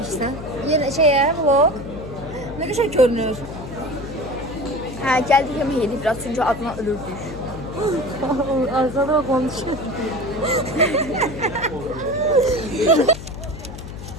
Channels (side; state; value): left; noise; hum, 12 dB below the sound